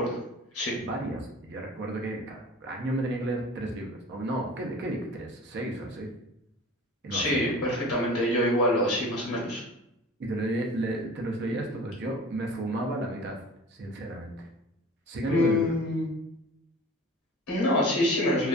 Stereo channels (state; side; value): normal; both; correlation 0.40